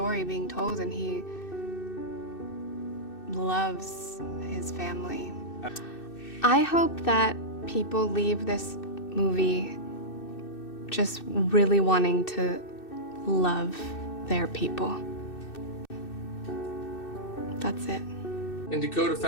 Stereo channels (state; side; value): late; right; 2.6 ms